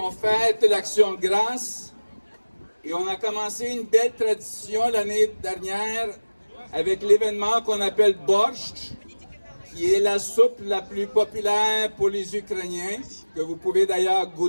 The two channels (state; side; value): inverted; both; correlation -1.00